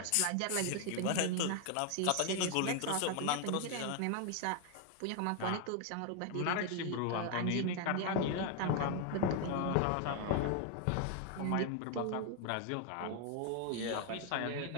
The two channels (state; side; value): different; both; correlation 0.00